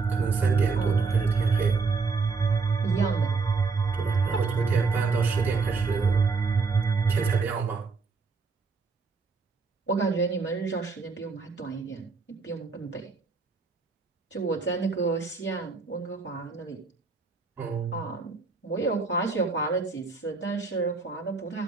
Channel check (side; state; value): left; quieter; 4.5 dB